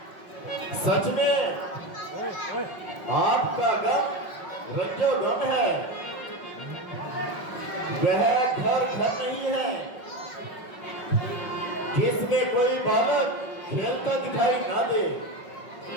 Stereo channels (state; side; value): late; right; 5.3 ms